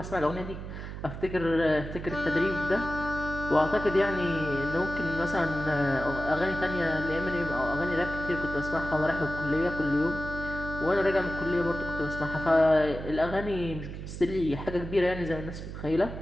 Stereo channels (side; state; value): right; noise; hum, 9 dB below the sound